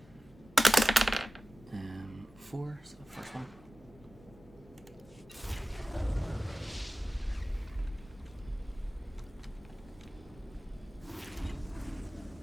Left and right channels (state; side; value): normal; both; correlation 0.96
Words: 4, so the first one.